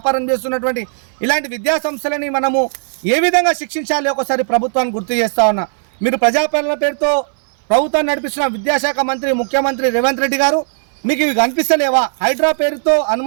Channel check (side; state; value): left; silent; 61 dB below the other